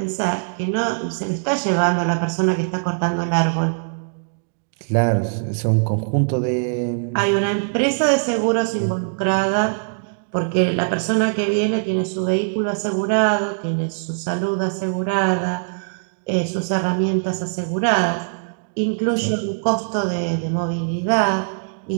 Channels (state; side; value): silent; left; digital silence